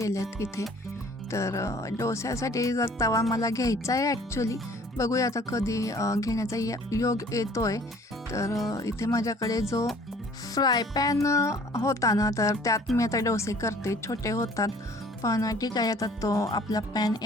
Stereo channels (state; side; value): normal; both; correlation 0.53